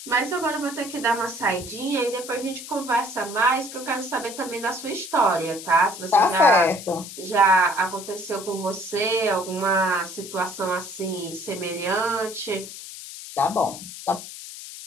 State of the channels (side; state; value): left; noise; hiss, 12 dB below the sound